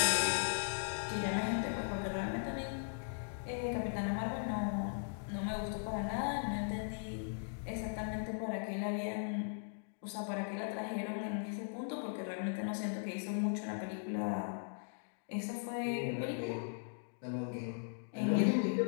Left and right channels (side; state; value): right; silent; digital silence